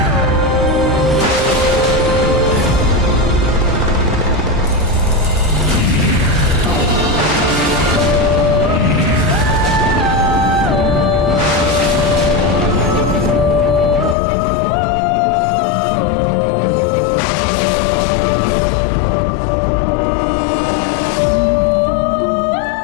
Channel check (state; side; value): drops out; right; at 14.2 s